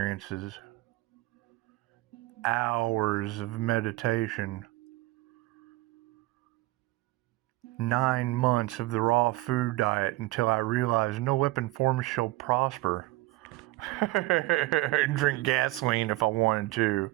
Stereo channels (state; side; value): quieter; left; 19.6 dB